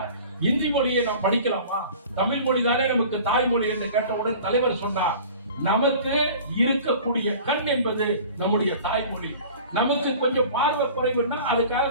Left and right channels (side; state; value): both; inverted; correlation -0.43